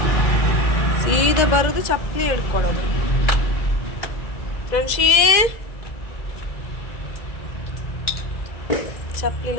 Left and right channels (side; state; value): right; late; 2.0 ms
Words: ಸೀದಾ ಬರೋದು ಚಪ್ಪಲಿ ಹಿಡ್ಕೊಳ್ಳೋದು. ಫ್ರೆಂಡ್ಶಿ